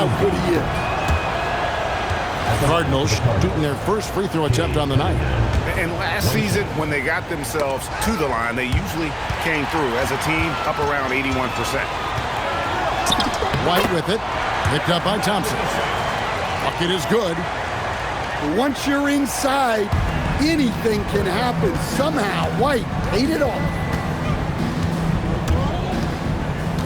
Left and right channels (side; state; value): both; identical; correlation 1.00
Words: good he is. The Cardinals shooting their first free throw attempt on the night. And last season, when they got themselves to the line, they usually came through as a team up around 81%. White with it, picked up by Thompson. Bucket is good. Once you're inside, anything can happen. Somehow, White ate it off.